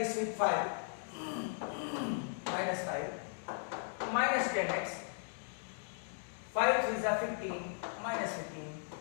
with 5, minus 5, minus 10x, 5 3s are 15, minus 15,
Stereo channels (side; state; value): right; silent; digital silence